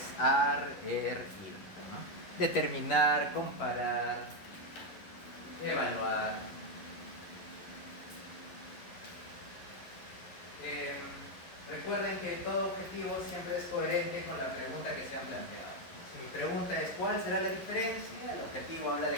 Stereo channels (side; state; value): right; late; 11 ms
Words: ar, ir, ¿no? Determinar, comparar, evaluar. Recuerden que todo objetivo siempre es coherente con la pregunta que se han planteado. Si mi pregunta es ¿cuál será la diferencia? El objetivo habla